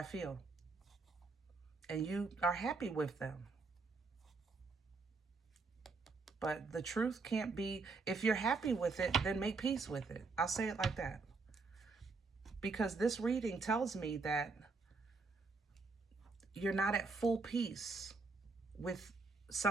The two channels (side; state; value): left; quieter; 4.1 dB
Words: feel. And you are happy with them. But the truth can't be, if you're happy with it, then make peace with it. I'll say it like that. Because this reading tells me that you're not at full peace with